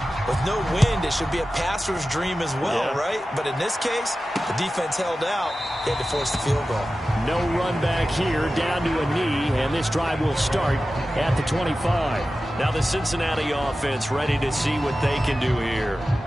with no wind, it should be a passer's dream as well, right? But in this case, the defense held out. They had to force the field goal. No run back here, down to a knee, and this drive will start at the 25. Now the Cincinnati offense ready to see what they can do here.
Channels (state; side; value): normal; both; correlation 0.94